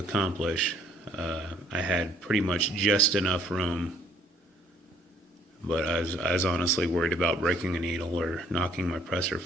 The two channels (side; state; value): both; normal; correlation 0.62